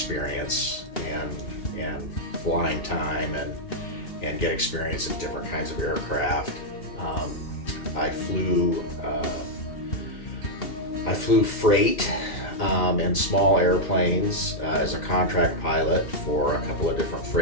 and flying time, and get experience in different kinds of aircraft. I flew freight and small airplanes as a contract pilot for a couple of different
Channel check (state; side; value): late; right; 2.7 ms